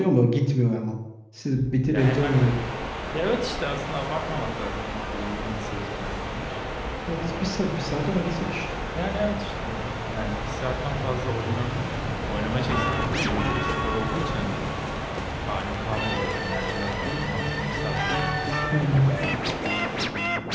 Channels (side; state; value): both; identical; correlation 1.00